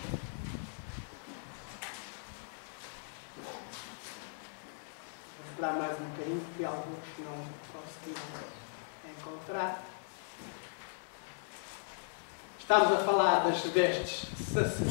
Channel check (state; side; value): silent; right; digital silence